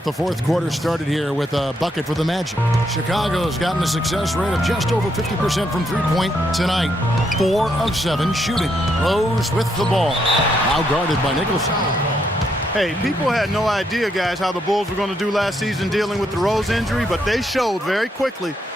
the fourth quarter started here with a bucket for the Magic. Chicago's gotten a success rate of just over 50% from three-point tonight. 4 of 7 shooting. Rose with the ball. Now guarded by Nicholson. Hey, people had no idea, guys, how the Bulls were going to do last season dealing with the Rose injury, but they showed very quickly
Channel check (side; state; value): both; normal; correlation 0.76